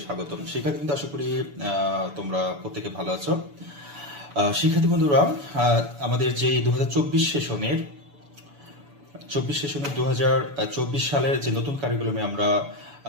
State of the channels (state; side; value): late; left; 7.0 ms